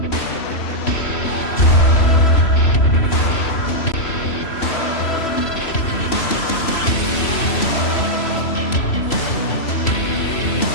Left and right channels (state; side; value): late; right; 3.0 ms